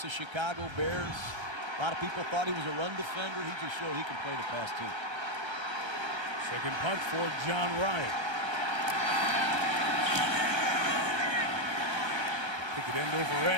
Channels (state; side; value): late; left; 1.3 ms